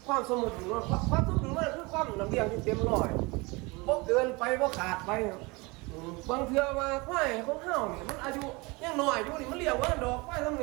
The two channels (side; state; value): left; quieter; 25.8 dB